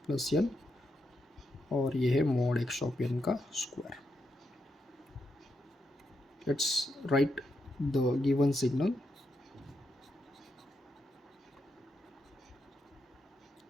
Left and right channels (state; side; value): normal; both; correlation 0.83